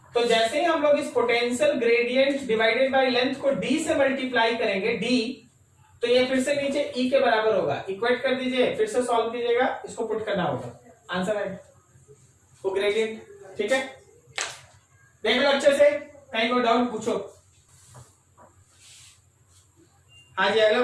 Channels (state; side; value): identical; both; correlation 1.00